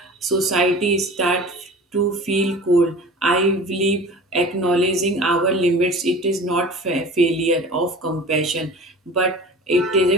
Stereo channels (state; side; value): normal; both; correlation 0.39